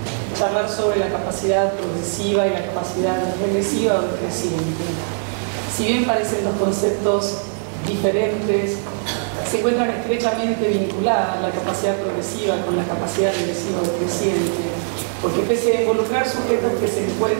charlar sobre la capacidad progresiva y la capacidad regresiva o creciente. Si bien parecen dos conceptos diferentes, se encuentran estrechamente vinculadas la capacidad progresiva con la capacidad regresiva o creciente, porque pese a involucrar sujetos que se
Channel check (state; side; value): silent; left; 63 dB below the other